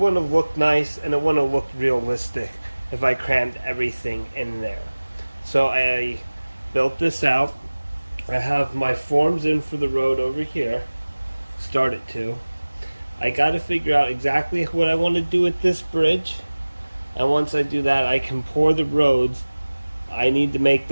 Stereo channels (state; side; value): inverted; both; correlation -1.00